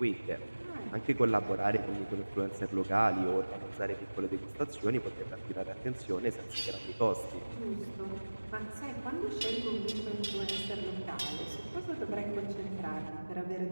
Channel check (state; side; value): inverted; both; correlation -1.00